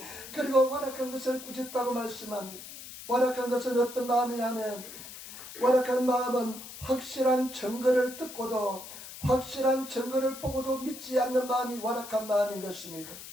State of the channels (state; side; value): noise; left; hiss, 13 dB below the sound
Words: 그리고 완악한 것을 꾸짖다고 말씀합니다. 완악한 것은 어떤 마음이냐면 완악한 마음은 확실한 증거를 듣고도 확실한 증거를 보고도 믿지 않는 마음이 완악한 마음인 것입니다.